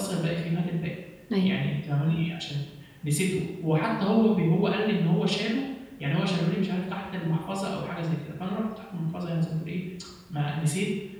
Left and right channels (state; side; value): identical; both; correlation 1.00